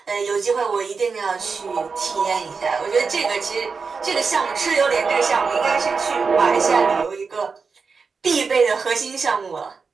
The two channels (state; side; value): quieter; left; 5.0 dB